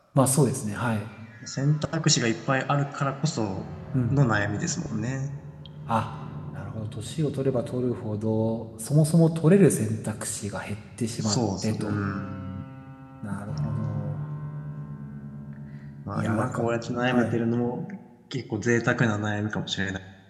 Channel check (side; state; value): both; identical; correlation 1.00